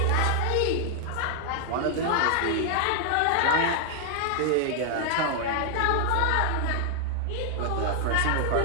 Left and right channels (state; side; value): different; both; correlation 0.00